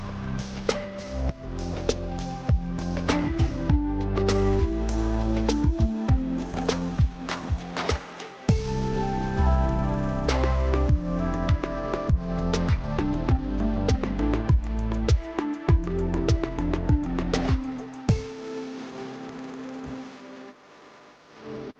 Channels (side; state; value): both; identical; correlation 1.00